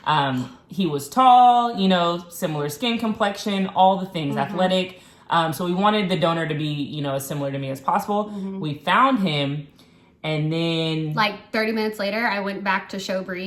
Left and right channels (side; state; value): both; identical; correlation 1.00